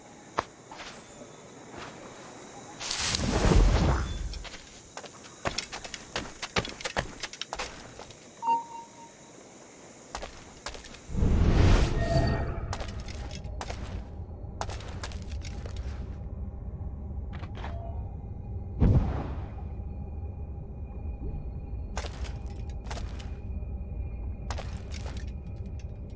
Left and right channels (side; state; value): both; identical; correlation 1.00